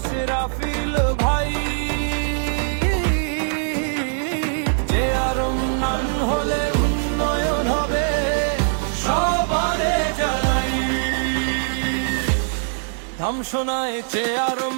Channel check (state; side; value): silent; left; digital silence